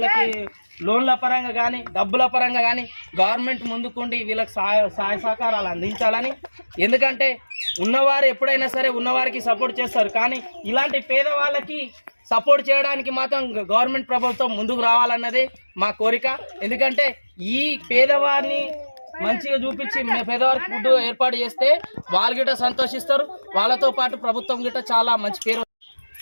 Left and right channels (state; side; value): inverted; both; correlation -1.00